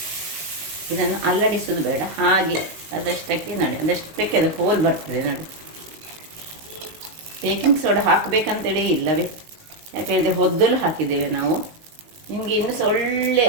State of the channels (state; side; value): late; left; 19 ms